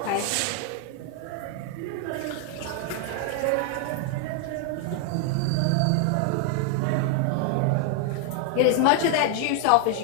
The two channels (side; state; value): both; different; correlation 0.00